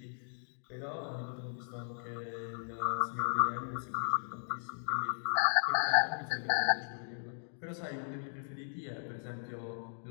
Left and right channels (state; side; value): silent; right; digital silence